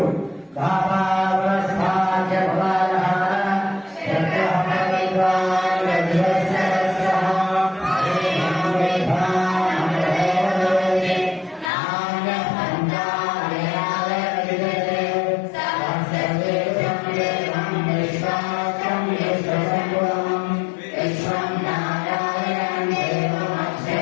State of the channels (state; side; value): drops out; right; at 11.7 s